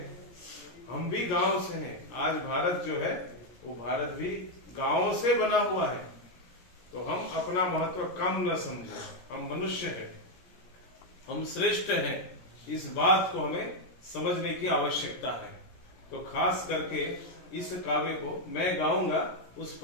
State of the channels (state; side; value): late; right; 16 ms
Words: हम भी गांव से हैं। आज भारत जो है वो भारत भी गांव से बना हुआ है। तो हम अपना महत्व कम न समझें। हम मनुष्य हैं, हम श्रेष्ठ हैं, इस बात को हमें समझने की आवश्यकता है। तो खास करके इस काव्य को मैं गाऊंगा, उस